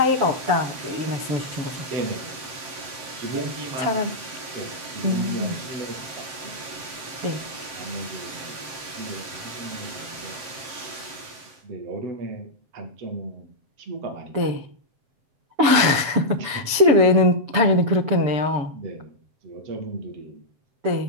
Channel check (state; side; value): late; left; 7.1 ms